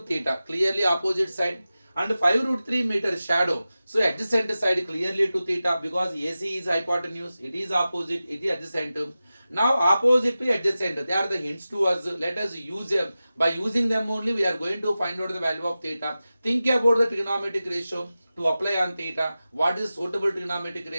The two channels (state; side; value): inverted; both; correlation -0.94